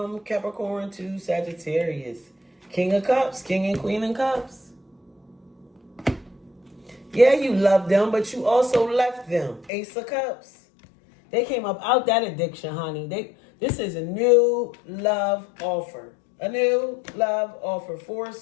Capricorn to Sagittarius. King of Cups, King and Queen of Cups. Yeah, you love them, but you also left them. Ace of Cups. They came up out that addiction, honey. This is a new love offer. A new love offer. 4 of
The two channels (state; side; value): drops out; right; at 9.7 s